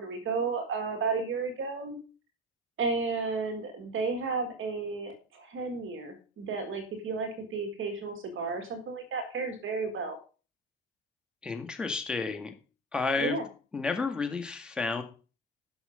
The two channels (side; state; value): both; normal; correlation 0.24